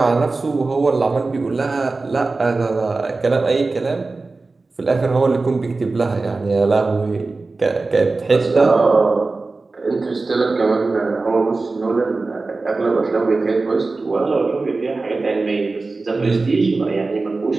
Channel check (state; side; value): quieter; left; 3.6 dB